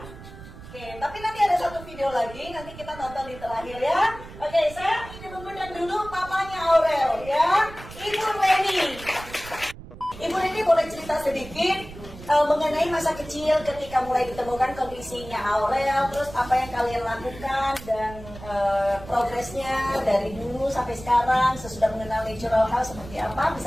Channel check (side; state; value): right; noise; rumble, 15 dB below the sound